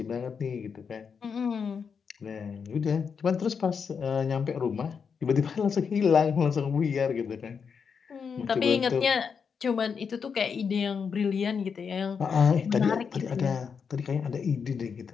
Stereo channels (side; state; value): right; quieter; 6.2 dB